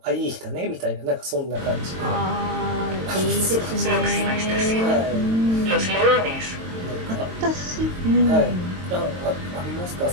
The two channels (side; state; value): left; late; 22 ms